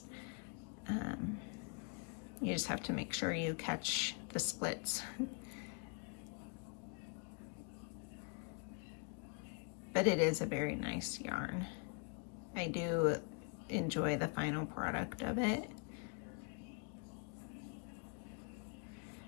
You just have to make sure you catch the splits. But it is a very nice yarn. I do enjoy the final product of it.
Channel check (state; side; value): quieter; right; 38.2 dB